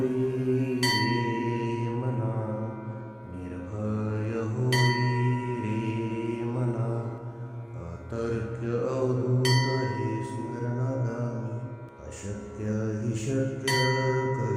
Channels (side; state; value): both; identical; correlation 1.00